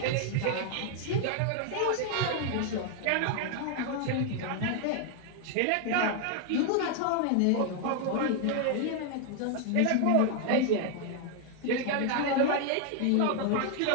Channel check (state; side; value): different; both; correlation 0.00